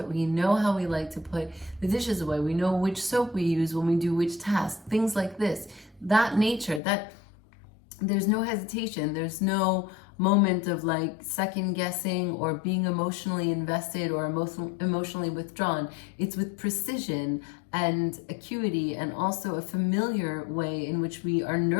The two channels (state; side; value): drops out; right; at 6.8 s